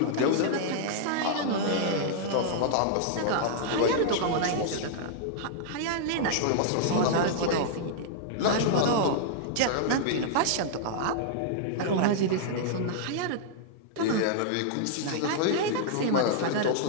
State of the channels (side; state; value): both; different; correlation -0.01